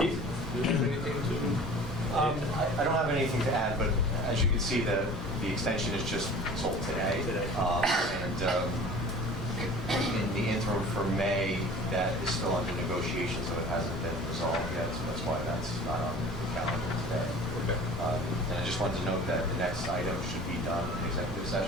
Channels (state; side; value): normal; both; correlation 0.43